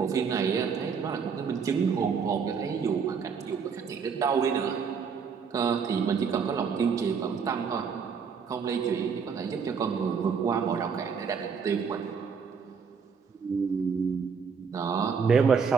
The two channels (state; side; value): quieter; left; 6.1 dB